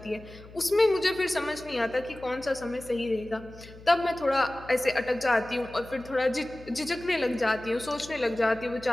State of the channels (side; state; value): left; noise; hum, 19 dB below the sound